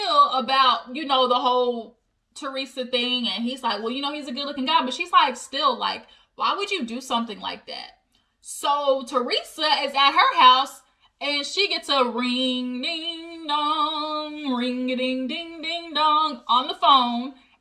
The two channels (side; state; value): both; identical; correlation 1.00